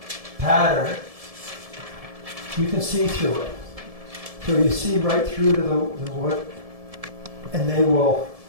pattern, you can see through it. So you see right through to the wood, and they will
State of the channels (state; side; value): late; left; 1.7 ms